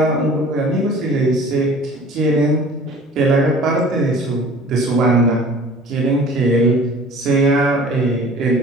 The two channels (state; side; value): normal; both; correlation 0.46